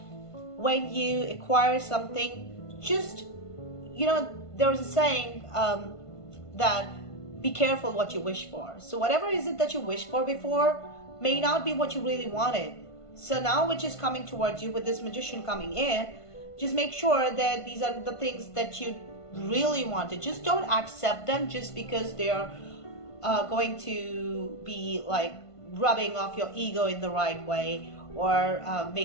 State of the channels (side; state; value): right; late; 1.5 ms